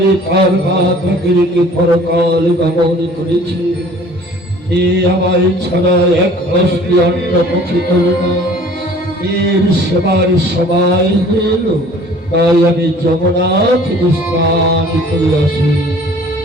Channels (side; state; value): both; normal; correlation 0.51